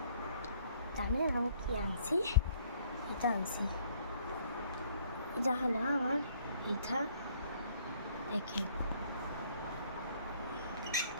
জানেন আমি কি আনছি? এটা আনছি। এটা হলো আমার এটা দেখেন,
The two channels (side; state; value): both; inverted; correlation -0.62